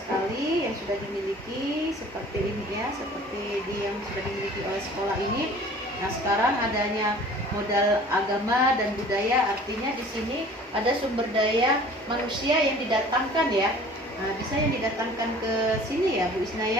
yang sudah dimiliki seperti ini ya, seperti yang sudah dimiliki oleh sekolah ini. Nah, sekarang adanya modal agama dan budaya, artinya di sini ada sumber daya manusia yang didatangkan ya. Nah, bisa yang didatangkan ke sini ya Bu Isna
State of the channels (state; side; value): normal; both; correlation 0.47